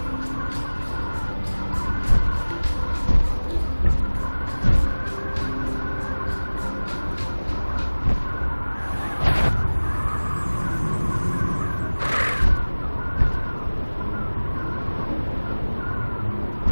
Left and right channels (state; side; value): inverted; both; correlation -1.00